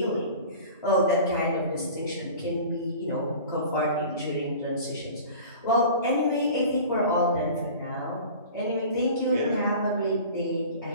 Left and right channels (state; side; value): inverted; both; correlation -0.40